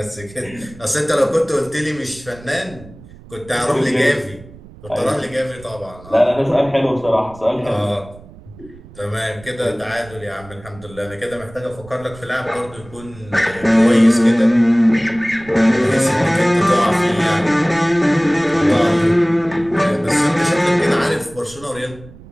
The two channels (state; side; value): noise; right; rumble, 20 dB below the sound